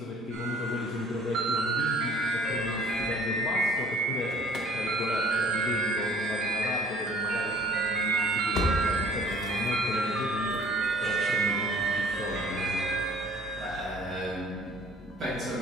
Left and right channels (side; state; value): both; normal; correlation 0.53